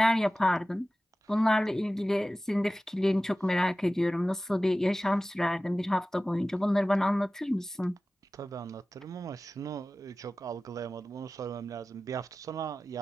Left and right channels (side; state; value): both; normal; correlation 0.96